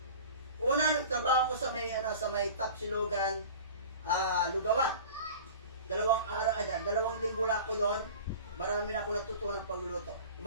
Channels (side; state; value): both; inverted; correlation -0.39